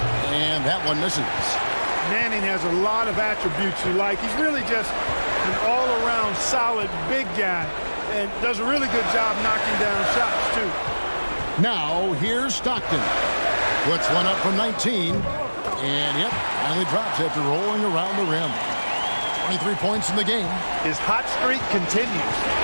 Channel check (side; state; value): both; inverted; correlation -1.00